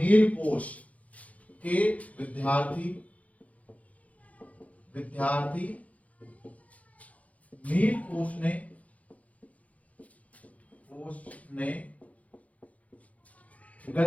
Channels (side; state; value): right; late; 0.068 ms